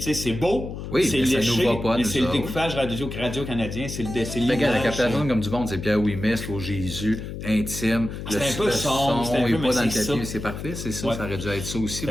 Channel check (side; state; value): left; noise; hum, 8 dB below the sound